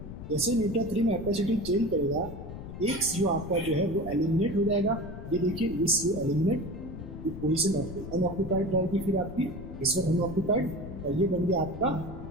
जैसे β3 में कैपेसिटी चेंज करेगा, एक CO आपका जो है वो एलिमिनेट हो जाएगा। ये देखिए, ये CO एलिमिनेट, ये पोजीशन अनऑक्यूपाइड रहेगी, फिर आपकी इस वक्त अनऑक्यूपाइड, और ये बन गया आपका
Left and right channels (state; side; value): noise; left; rumble, 11 dB below the sound